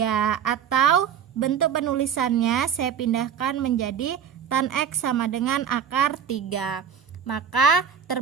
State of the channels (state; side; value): quieter; left; 7.9 dB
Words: Atau bentuk penulisannya saya pindahkan menjadi tan X sama dengan akar 3. Maka